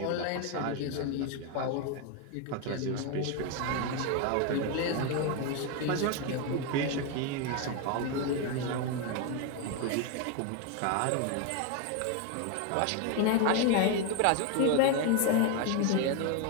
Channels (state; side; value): different; both; correlation 0.02